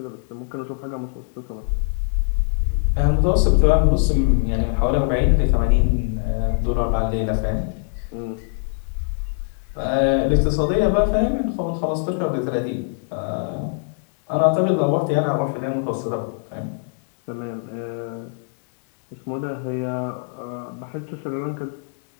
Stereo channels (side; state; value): right; silent; digital silence